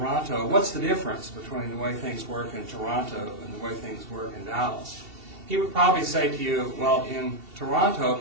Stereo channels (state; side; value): late; left; 2.7 ms